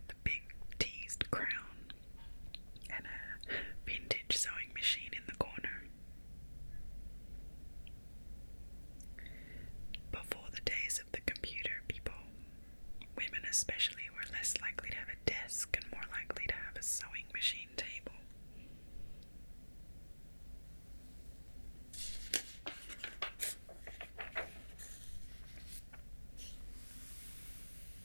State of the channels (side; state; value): both; inverted; correlation -1.00